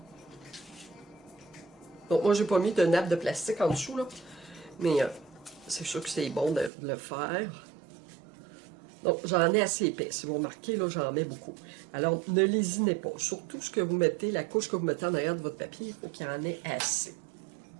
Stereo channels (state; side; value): drops out; left; at 6.7 s